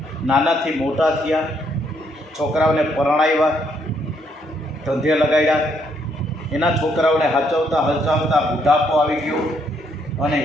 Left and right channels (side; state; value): both; normal; correlation 0.72